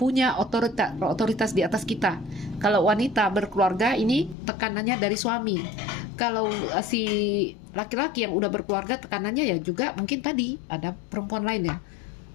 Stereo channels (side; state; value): right; drops out; at 4.4 s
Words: otoritas di atas kita. Kalau wanita berkeluarga ini tekanannya dari suami. Kalau si laki-laki yang udah berkeluarga tekanannya ya juga mungkin tadi ada perempuan lain ya.